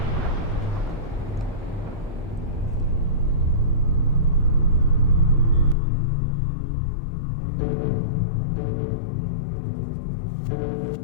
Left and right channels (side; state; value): right; drops out; at 5.8 s